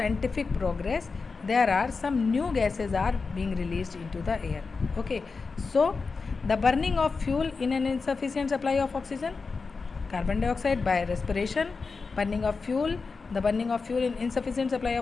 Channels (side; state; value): right; quieter; 4.5 dB